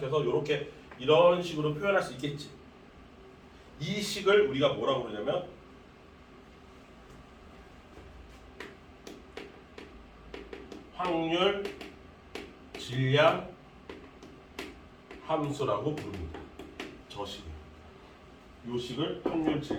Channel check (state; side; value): identical; both; correlation 1.00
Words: 이렇게 이런 식으로 표현할 수 있겠지. 이 식을 우리가 뭐라고 그러냐면 확률 질량 함수라고 부릅니다. 저 식을. 이 식을 확률